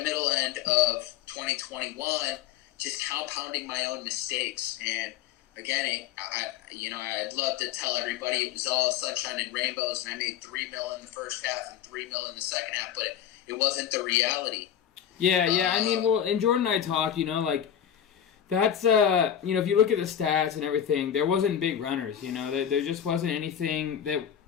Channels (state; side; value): quieter; right; 9.6 dB